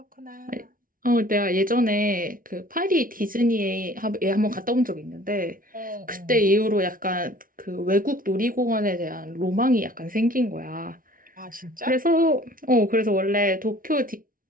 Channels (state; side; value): late; left; 0.40 ms